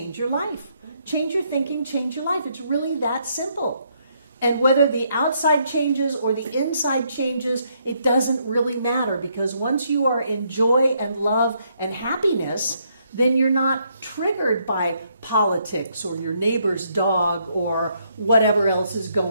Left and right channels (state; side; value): inverted; both; correlation -0.73